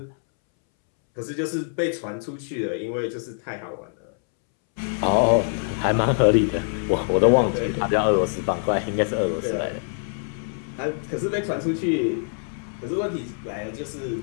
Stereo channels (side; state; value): right; silent; 62 dB below the other